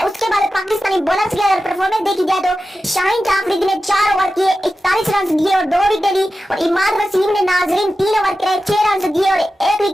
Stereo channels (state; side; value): normal; both; correlation 0.93